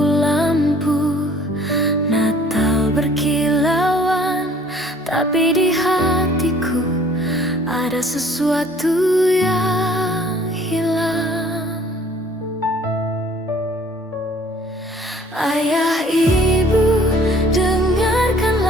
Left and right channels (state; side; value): normal; both; correlation 0.55